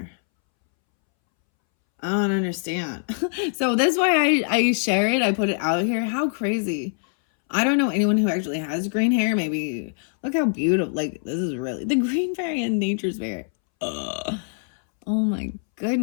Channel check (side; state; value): right; silent; 63 dB below the other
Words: I don't understand. So that's why I share it. I put it out here. How crazy. I don't know anyone who actually has green hair. Maybe look how beautiful. Like, this is really the green fairy and nature's fairy. Ugh. Oh my